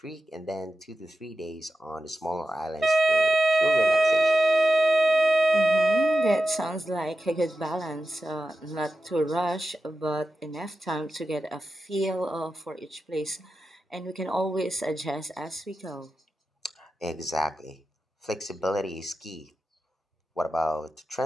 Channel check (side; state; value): both; normal; correlation 0.90